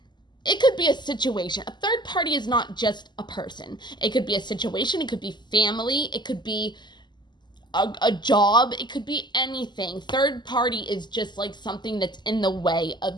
it could be a situation. A third party is not just a person. It could be a situation. It could be family. It could be a job. It could be anything. Third party is just like something that's in the way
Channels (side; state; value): right; late; 0.21 ms